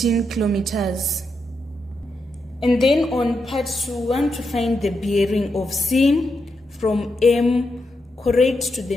kilometers. And then on part 2, we want to find the bearing of C from M correct to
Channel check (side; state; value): both; normal; correlation 0.84